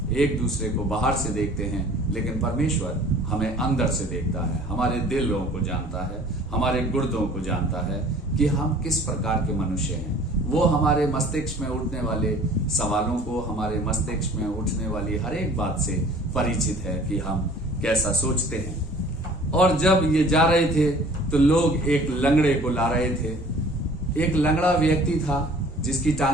एक दूसरे को बाहर से देखते हैं, लेकिन परमेश्वर हमें अंदर से देखता है, हमारे दिलों को जानता है, हमारे गुर्दों को जानता है कि हम किस प्रकार के मनुष्य हैं। वो हमारे मस्तिष्क में उठने वाले सवालों को, हमारे मस्तिष्क में उठने वाली हर एक बात से परिचित है कि हम कैसा सोचते हैं। और जब ये जा रहे थे तो लोग एक लंगड़े को ला रहे थे। एक लंगड़ा व्यक्ति था जिसकी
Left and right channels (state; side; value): normal; both; correlation 0.49